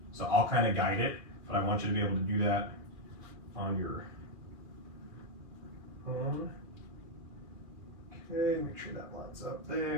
So I'll kind of guide it, but I want you to be able to do that on your own. Okay, make sure that lines up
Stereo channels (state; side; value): late; left; 2.4 ms